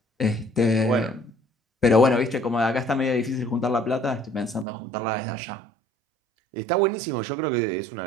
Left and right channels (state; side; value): drops out; left; at 4.7 s